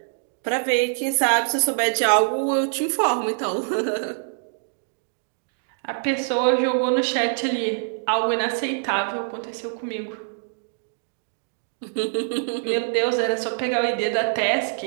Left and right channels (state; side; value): silent; left; digital silence